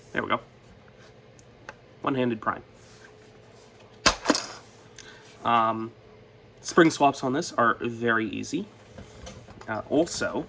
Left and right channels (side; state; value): both; identical; correlation 1.00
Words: There we go. One-handed prime. Spring swaps on this are very easy. Also,